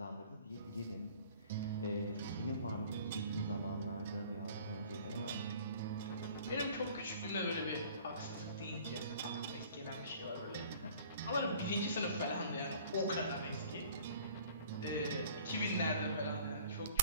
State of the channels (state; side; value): inverted; both; correlation -0.51